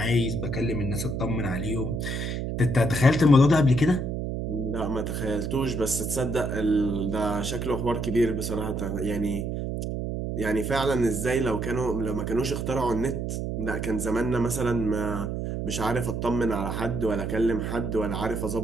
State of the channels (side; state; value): right; noise; hum, 3 dB below the sound